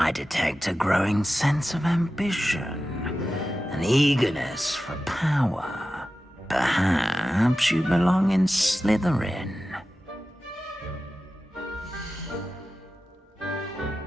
detect a growing sense of ambition, an eagerness for power. Perhaps you belong in Slytherin.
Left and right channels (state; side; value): normal; both; correlation 0.93